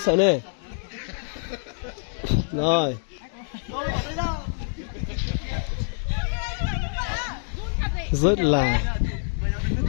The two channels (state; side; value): silent; right; digital silence